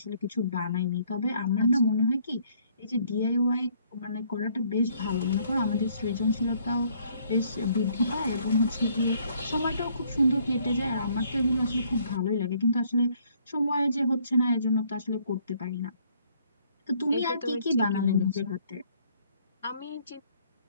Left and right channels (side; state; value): both; inverted; correlation -0.64